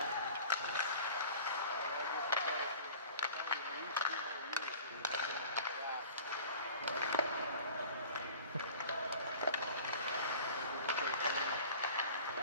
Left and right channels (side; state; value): both; inverted; correlation -0.43